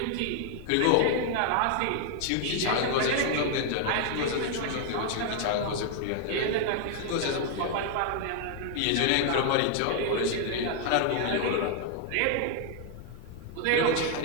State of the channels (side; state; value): both; different; correlation 0.00